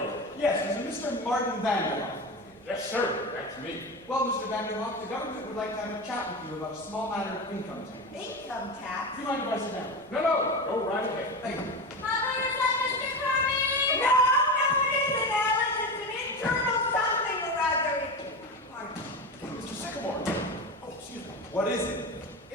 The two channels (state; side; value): normal; both; correlation 0.23